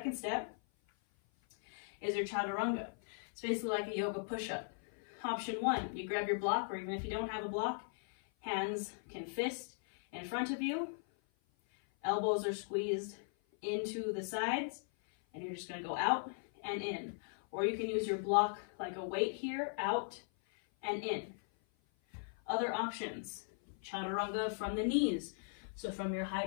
step is your chaturanga. It's basically like a yoga push-up. Option one, you grab your block, or even if you don't have a block, hands can fist in front of you. Elbows are squeezed into the sides, and you're just going to go out and in. Or you can use your block like a weight here, out and in. Other options, chaturanga from the knees. So from your high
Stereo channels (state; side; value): silent; right; 52 dB below the other